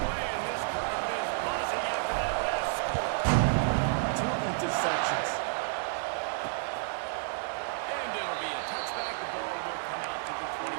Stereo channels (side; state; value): left; silent; 57 dB below the other